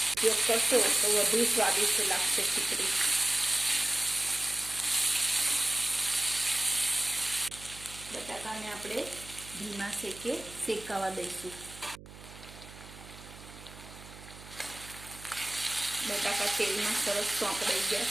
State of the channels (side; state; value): right; noise; hum, 17 dB below the sound